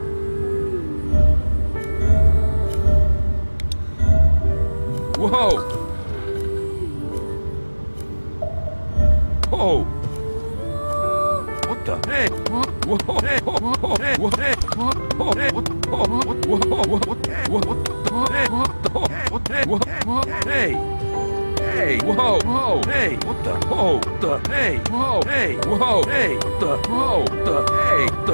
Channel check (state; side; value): inverted; both; correlation -1.00